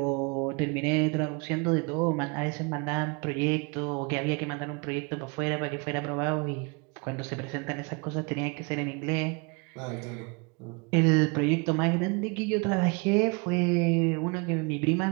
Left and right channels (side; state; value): left; quieter; 30.9 dB